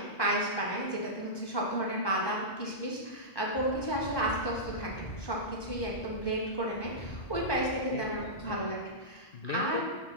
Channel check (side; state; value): right; late; 1.2 ms